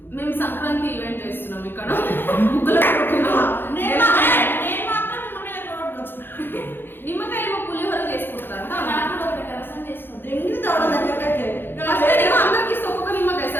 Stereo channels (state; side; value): late; right; 0.10 ms